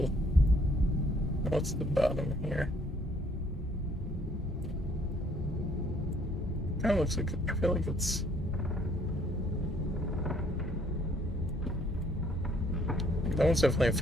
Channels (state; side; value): normal; both; correlation 0.63